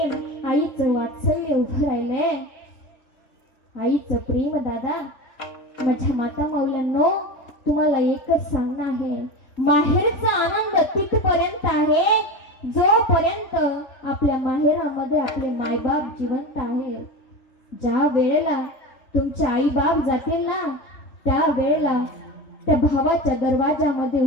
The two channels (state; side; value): late; right; 3.7 ms